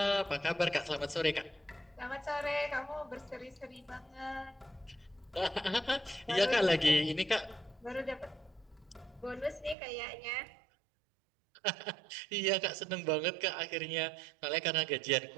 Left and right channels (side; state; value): left; drops out; at 9.8 s